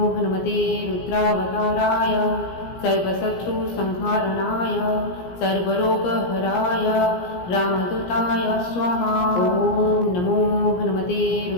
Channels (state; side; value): late; right; 17 ms